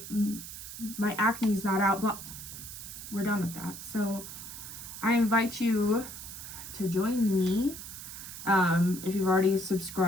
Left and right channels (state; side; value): noise; right; hiss, 11 dB below the sound